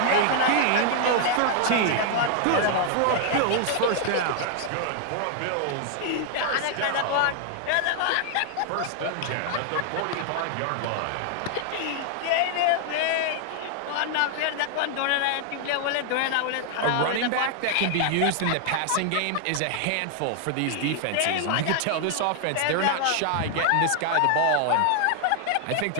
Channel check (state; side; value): different; both; correlation 0.00